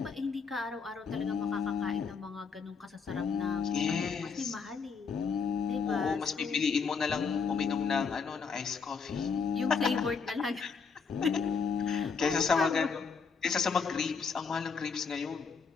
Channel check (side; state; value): right; quieter; 5.5 dB